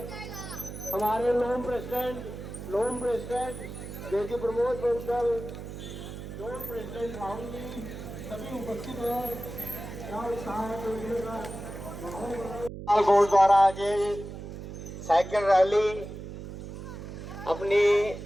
हमारे लोन प्रेसिडेंट जेसी प्रमोद बंसल, लोन प्रेसिडेंट राहुल जी सभी उपस्थित हैं। गोल्ड द्वारा आज साइकिल रैली अपनी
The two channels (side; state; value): right; noise; hum, 10 dB below the sound